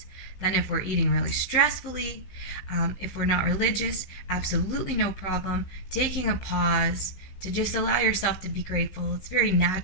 than if we're eating really stressfully. If we're not religious, absolutely no problem. Taking a pause to just allow yourself to be grateful. It's a very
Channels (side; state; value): right; late; 15 ms